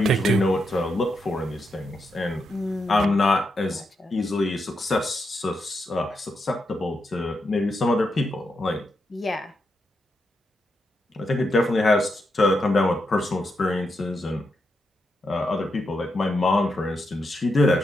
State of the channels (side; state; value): both; normal; correlation 0.83